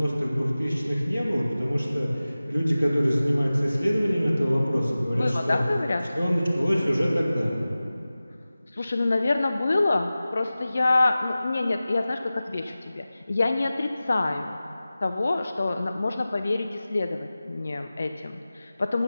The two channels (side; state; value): both; inverted; correlation -0.96